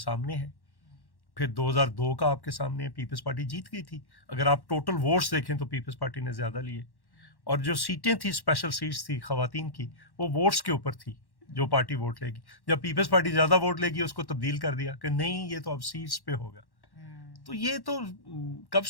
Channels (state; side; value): late; right; 1.1 ms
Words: ہے, پھر 2002 کا آپ کے سامنے ہے. پیپلز پارٹی جیت گئی تھی. اگر آپ ٹوٹل ووٹس دیکھیں تو پیپلز پارٹی نے زیادہ لیے, اور جو سیٹیں تھی اسپیشل سیٹس تھی خواتین کی, وہ ووٹس کے اوپر تھی, جو پارٹی ووٹ لے گی. جب پیپلز پارٹی زیادہ ووٹ لے گی اس کو تبدیل کر دیا کہ نہیں یہ تو اب سیٹس پہ ہوگا. تو یہ تو کب